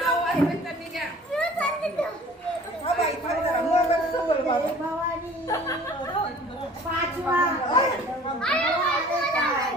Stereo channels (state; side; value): normal; both; correlation 0.48